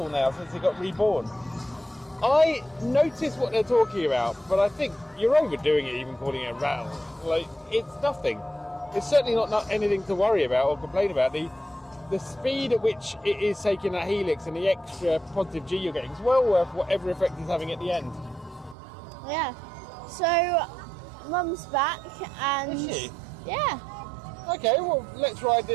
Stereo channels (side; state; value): left; drops out; at 18.8 s